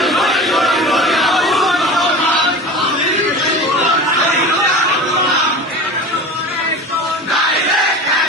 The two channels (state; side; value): normal; both; correlation 0.33